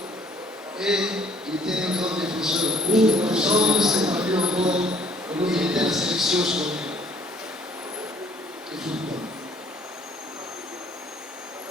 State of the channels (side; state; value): both; normal; correlation 0.58